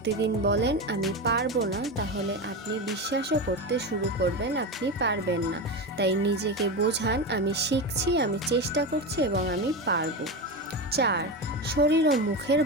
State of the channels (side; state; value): both; normal; correlation 0.19